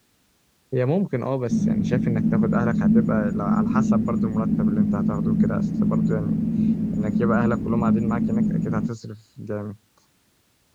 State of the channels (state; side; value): identical; both; correlation 1.00